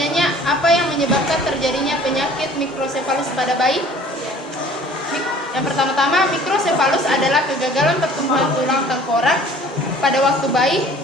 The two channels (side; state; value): both; normal; correlation 0.50